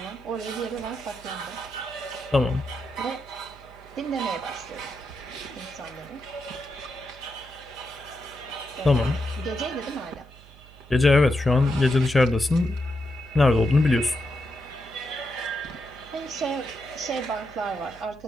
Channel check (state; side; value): noise; right; hum, 22 dB below the sound